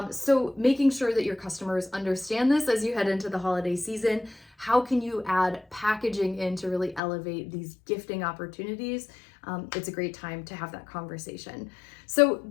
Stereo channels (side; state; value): right; drops out; at 7.0 s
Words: So making sure that your customers understand this as you head into the holiday season. How can you add packaging in to really elevate these gifting opportunities? It's a great time to have that conversation. So